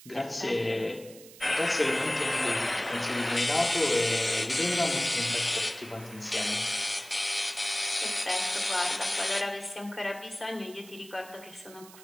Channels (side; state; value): right; noise; hiss, 19 dB below the sound